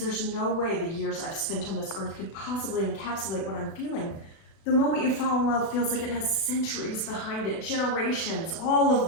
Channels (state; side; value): late; right; 36 ms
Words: no way the years I've spent on this earth could possibly encapsulate what I'm feeling. The moment you fall in love feels like it has centuries behind it, generations, all of